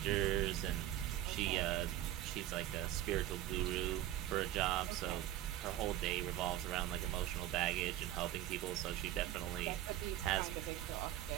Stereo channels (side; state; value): left; quieter; 13.2 dB